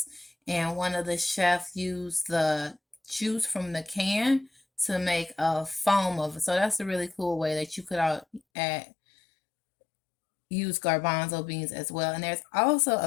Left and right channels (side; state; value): right; drops out; at 8.4 s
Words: and one of the chefs used the juice from the can to make a foam of it. So that's a really cool way that you could add use garbanzo beans as well. And there's also